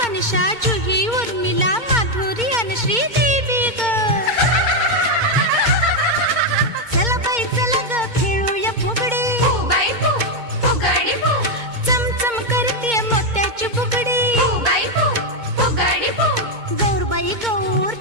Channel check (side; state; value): left; late; 2.2 ms